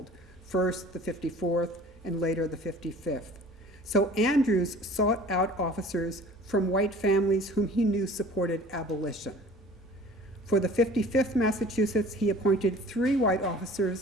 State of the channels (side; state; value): both; normal; correlation 0.46